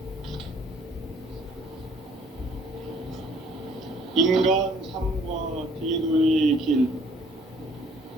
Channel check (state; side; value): normal; both; correlation 0.59